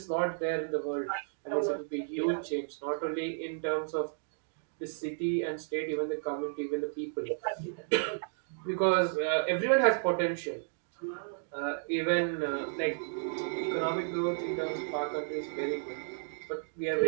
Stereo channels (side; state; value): left; silent; digital silence